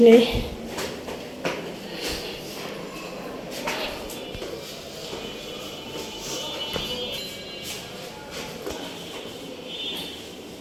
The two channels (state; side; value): identical; both; correlation 1.00